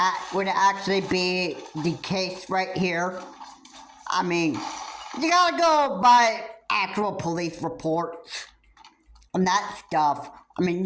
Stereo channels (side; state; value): both; identical; correlation 1.00